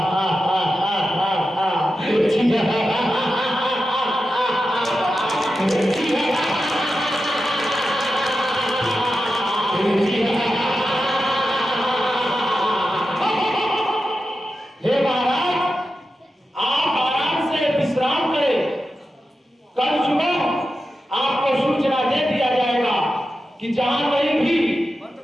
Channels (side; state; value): both; normal; correlation 0.90